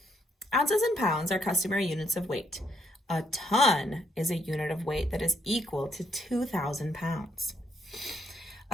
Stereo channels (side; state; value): both; normal; correlation 0.72